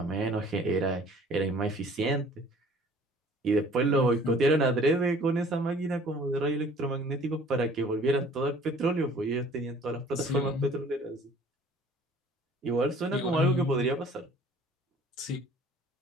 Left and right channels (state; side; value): normal; both; correlation 0.52